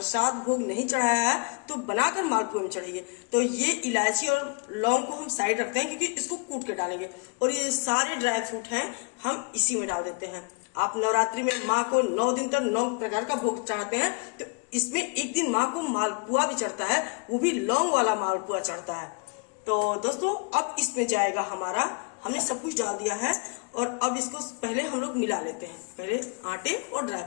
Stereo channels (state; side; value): quieter; right; 35.6 dB